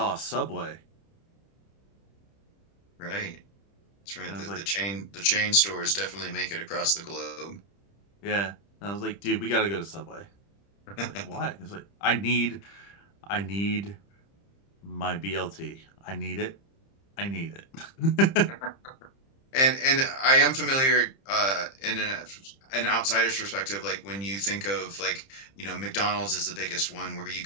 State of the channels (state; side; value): late; right; 30 ms